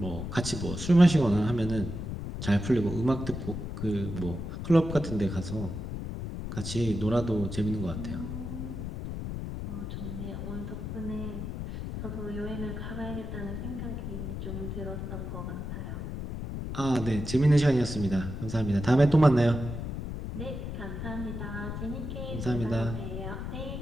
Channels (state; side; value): noise; left; rumble, 6 dB below the sound